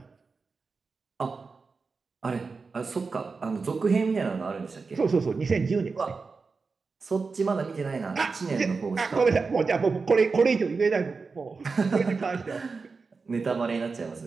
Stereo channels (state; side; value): quieter; left; 4.5 dB